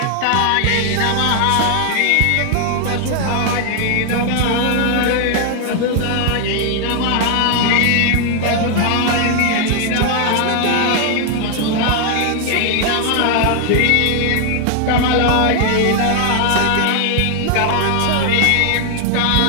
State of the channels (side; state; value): both; different; correlation 0.00